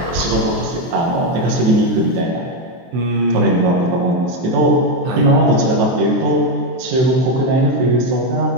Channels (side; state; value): left; late; 23 ms